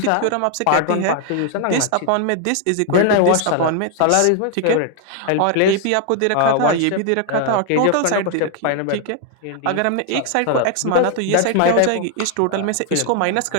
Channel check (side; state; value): both; different; correlation 0.00